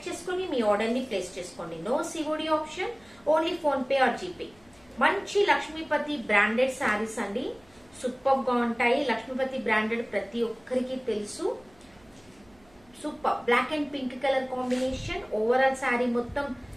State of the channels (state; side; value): noise; right; hum, 30 dB below the sound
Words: చేసుకొని మీ ఆర్డర్ ని ప్లేస్ చేసుకోండి. No COD option, only PhonePe or GPay. మంచి లక్ష్మీపతి బ్రాండెడ్ శారీస్ అండి. సూపర్ గా ఉంటాయి. లక్ష్మీపతి బ్రాండెడ్ ప్రతి ఒక్కరికి తెలుసు. Super black and pink colour combination. Overall saree మొత్తం